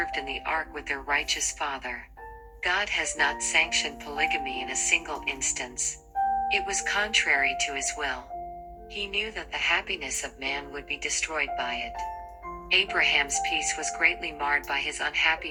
in the ark with their righteous father. God has not sanctioned polygamy in a single instance. It was contrary to his will. He knew that the happiness of man would be destroyed by it. Abraham's peace was greatly marred by his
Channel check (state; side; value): identical; both; correlation 1.00